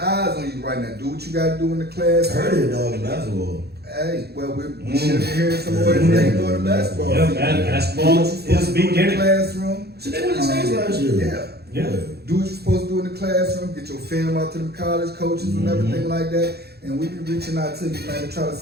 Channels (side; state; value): left; late; 0.47 ms